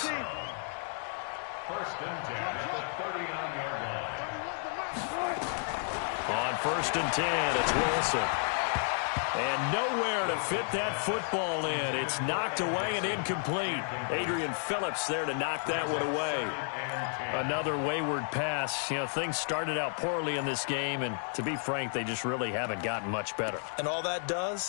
1st and 10 at the 39-yard line. On 1st and 10, it's Wilson. And nowhere to fit that football in. It's knocked away and incomplete. Adrian Phillips there to knock that one away. Another wayward pass. You know, things started out poorly in this game, and to be frank, they just really haven't gotten much better. And all that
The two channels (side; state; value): right; silent; 56 dB below the other